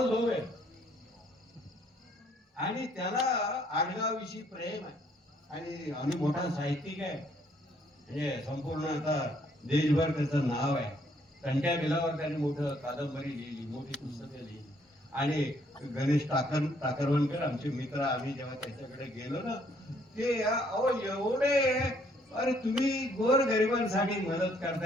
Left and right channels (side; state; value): both; normal; correlation 0.66